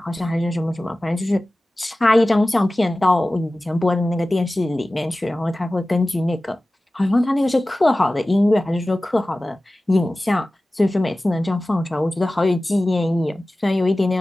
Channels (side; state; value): both; normal; correlation 0.97